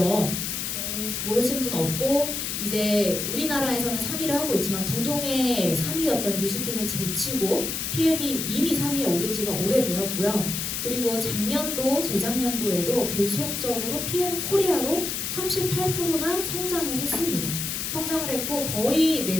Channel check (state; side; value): noise; left; hiss, 3 dB below the sound